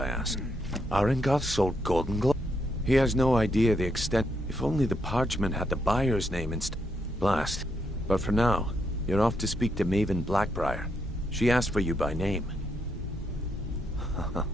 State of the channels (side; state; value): both; normal; correlation 0.78